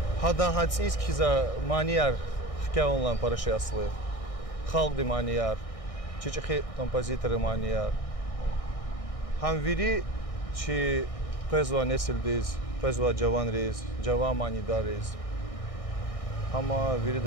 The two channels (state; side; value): late; right; 1.6 ms